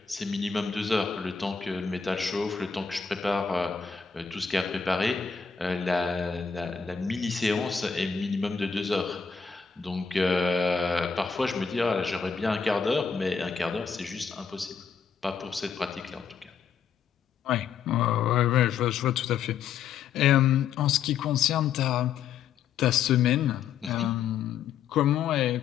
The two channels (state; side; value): quieter; right; 6.6 dB